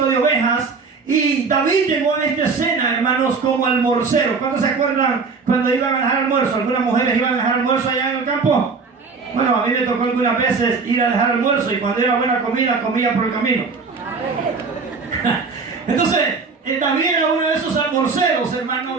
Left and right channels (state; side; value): quieter; left; 4.7 dB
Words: de ovejas. Y David llegó a esta escena, hermanos, como almorcero. ¿Cuántos se acuerdan cuando iban a dejar almuerzo? ¿Algunas mujeres iban a dejar almuerzo allá en el campo? Bueno, a mí me tocó algunas veces ir a dejar almuerzo, y cuando era buena comida, comía por el camino. Entonces, David era uno de esos almorceros, hermano,